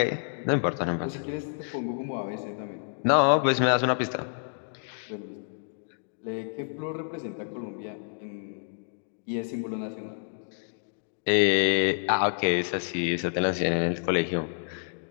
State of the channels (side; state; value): right; silent; digital silence